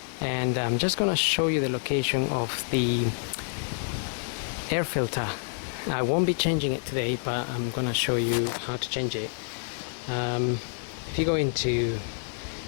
and I'm just gonna show you the location of the air filter. I won't be changing it today, but I'm gonna show you how to change it. If you go into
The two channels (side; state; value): right; silent; digital silence